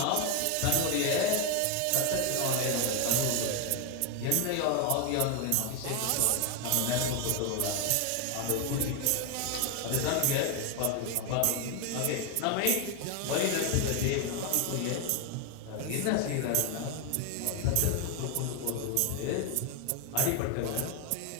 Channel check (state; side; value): different; both; correlation 0.01